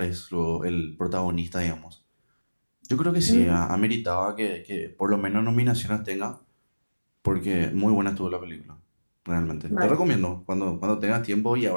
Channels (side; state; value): both; inverted; correlation -1.00